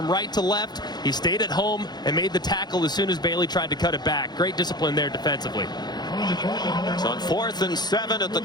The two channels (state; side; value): late; right; 0.20 ms